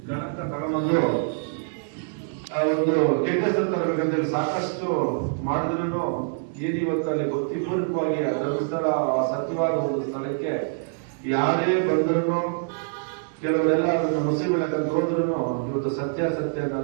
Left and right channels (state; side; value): silent; left; digital silence